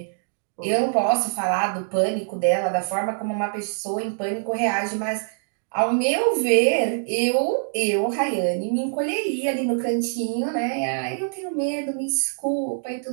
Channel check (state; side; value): silent; left; digital silence